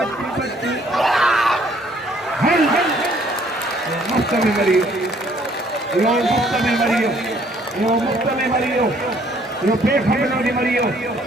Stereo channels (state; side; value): normal; both; correlation 0.62